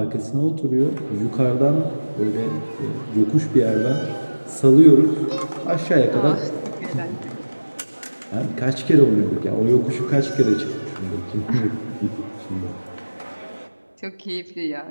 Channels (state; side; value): inverted; both; correlation -1.00